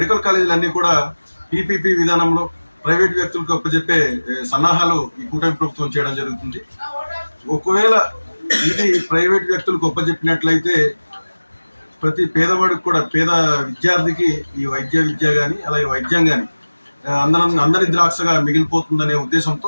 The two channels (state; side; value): inverted; both; correlation -1.00